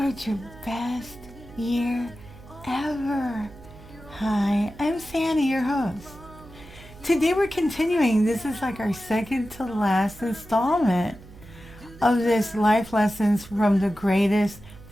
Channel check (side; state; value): right; noise; hum, 19 dB below the sound